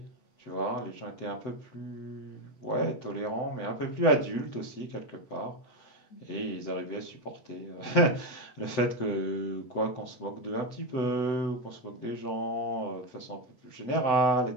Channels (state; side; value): late; right; 7.9 ms